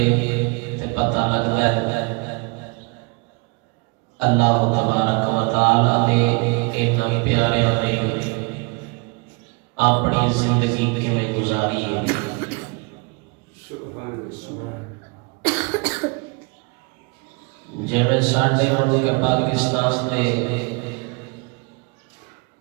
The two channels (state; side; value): quieter; left; 29.6 dB